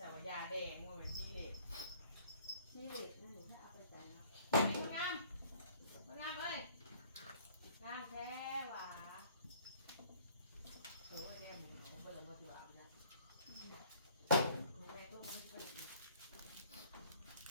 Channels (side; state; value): both; inverted; correlation -0.55